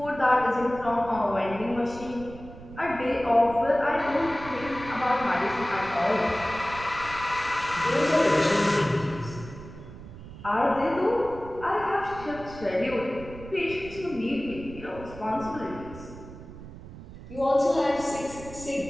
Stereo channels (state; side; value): noise; right; rumble, 15 dB below the sound